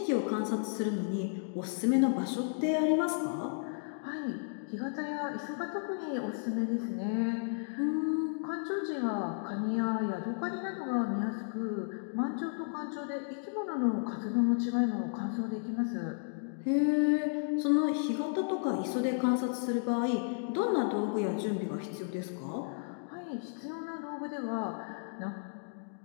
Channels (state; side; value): silent; right; digital silence